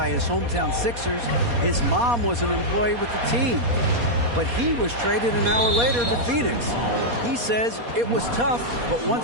his hometown Sixers, his mom was an employee with the team. But he was traded an hour later to Phoenix. He says, it was tough, but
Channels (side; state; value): left; late; 4.2 ms